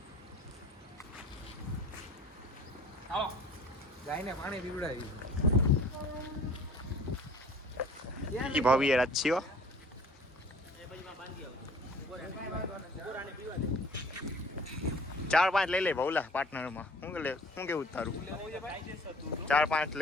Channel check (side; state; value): both; normal; correlation 0.50